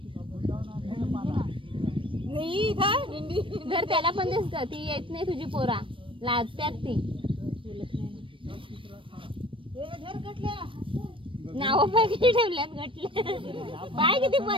जर त्याला पण दिसत ती येत नाही तुझी पोरा लाजत्यात ती. नाव पाय किती ठेवल्यात घटले पाय किती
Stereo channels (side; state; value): left; late; 0.25 ms